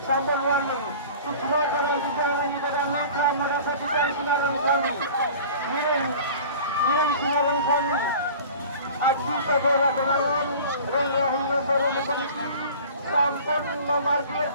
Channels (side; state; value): both; inverted; correlation -0.42